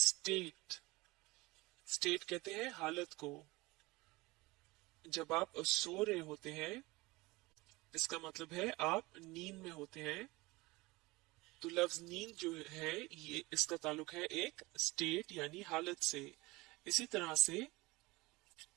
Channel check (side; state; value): left; quieter; 22.2 dB